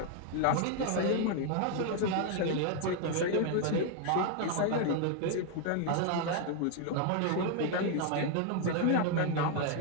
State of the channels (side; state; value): both; different; correlation 0.00